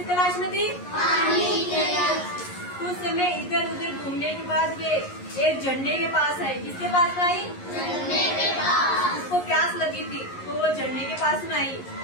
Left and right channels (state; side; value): late; right; 11 ms